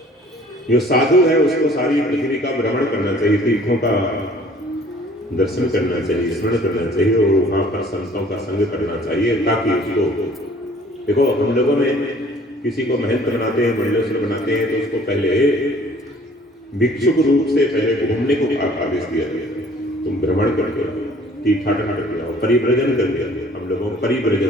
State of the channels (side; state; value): both; normal; correlation 0.53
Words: जो साधु है उसको सारी पृथ्वी का भ्रमण करना चाहिए, तीर्थों का दर्शन करना चाहिए, स्मरण करना चाहिए, और वहां पर संतों का संग करना चाहिए, ताकि उसको, देखो हम लोगों में किसी को महंत बनाते हैं, मंडलेश्वर बनाते हैं, तो उसको पहले भिक्षुक रूप से पहले घूमने को आदेश दिया गया। तुम भ्रमण करके आओ, तीर्थाटन करके आओ, परिव्रजन करके आओ। हम लोगों को